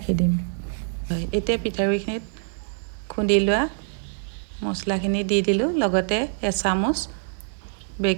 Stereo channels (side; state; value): left; silent; digital silence